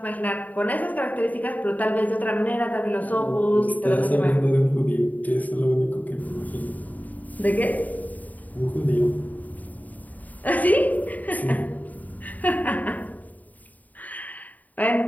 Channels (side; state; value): right; late; 0.077 ms